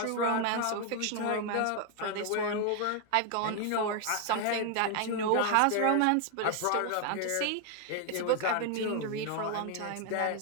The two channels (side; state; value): both; different; correlation 0.01